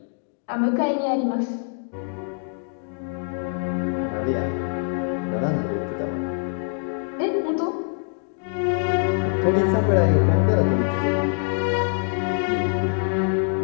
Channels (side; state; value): right; silent; 60 dB below the other